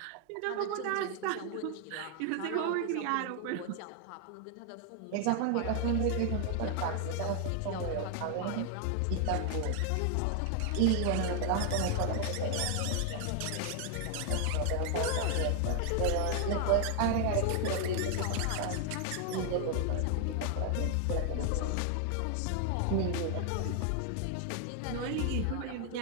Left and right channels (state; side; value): different; both; correlation 0.00